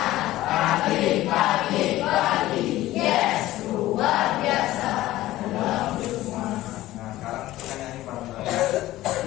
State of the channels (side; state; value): right; quieter; 16.0 dB